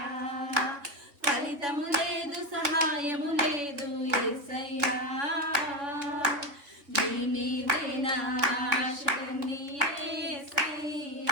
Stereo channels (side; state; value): left; late; 3.3 ms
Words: ఫలితము లేదు, సహాయము లేదు యేసయ్యా, నీ మీదే నా ఆశలన్నీ